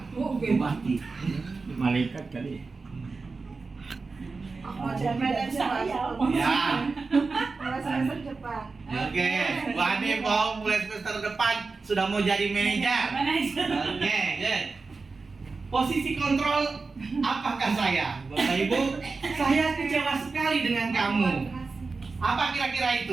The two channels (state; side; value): quieter; left; 4.2 dB